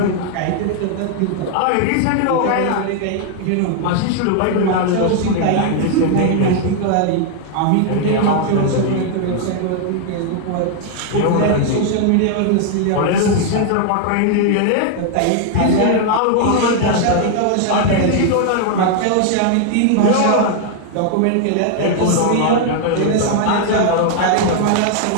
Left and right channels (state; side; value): different; both; correlation 0.00